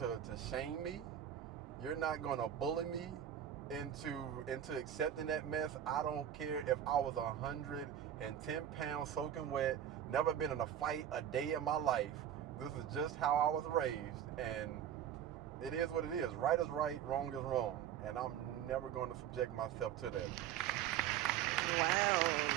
shame me. You're not going to bully me. into accepting that mess. I don't care if I was 110 pounds soaking wet, never been in a fight a day in my life. This is just how I was raised, and it is what it is. Right is right, wrong is wrong, and I'm never going to subject myself to that. Wow.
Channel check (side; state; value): left; quieter; 10.0 dB